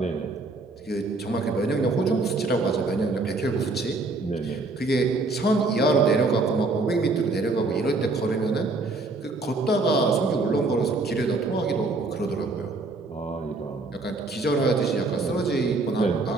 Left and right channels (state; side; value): quieter; left; 3.4 dB